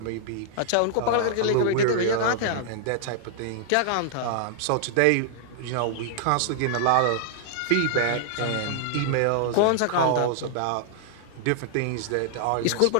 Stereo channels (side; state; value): both; different; correlation -0.01